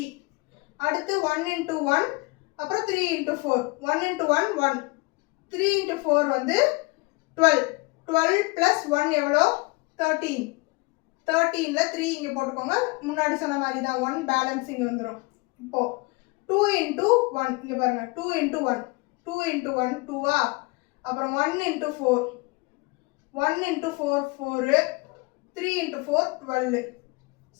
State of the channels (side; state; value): right; quieter; 26.2 dB